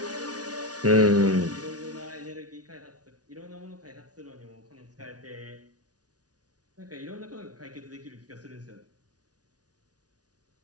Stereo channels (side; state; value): left; late; 0.68 ms